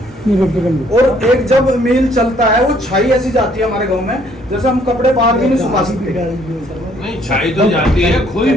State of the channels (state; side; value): normal; both; correlation 0.64